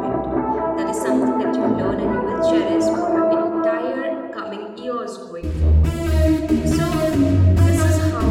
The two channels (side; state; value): both; identical; correlation 1.00